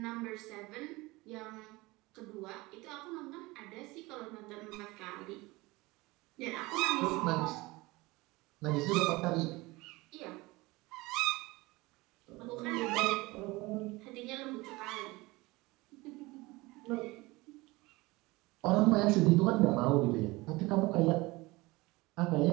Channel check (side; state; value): left; quieter; 21.9 dB